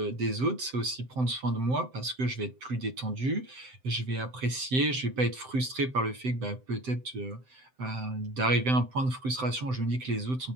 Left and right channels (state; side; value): late; left; 7.8 ms